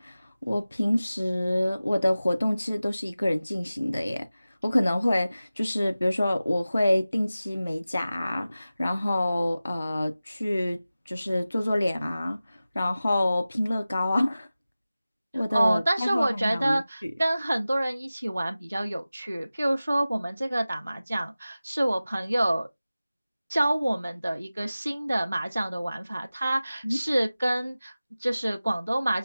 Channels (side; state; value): both; inverted; correlation -0.96